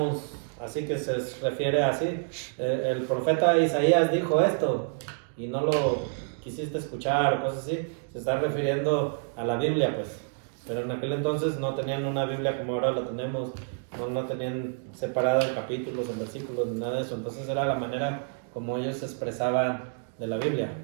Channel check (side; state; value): left; silent; digital silence